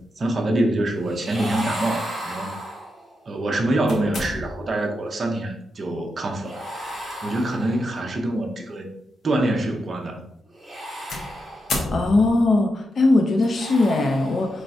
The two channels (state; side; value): normal; both; correlation 0.86